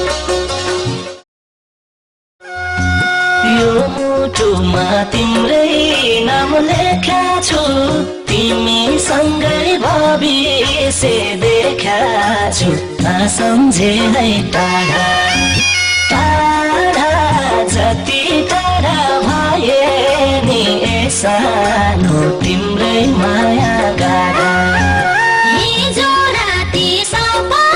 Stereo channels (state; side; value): identical; both; correlation 1.00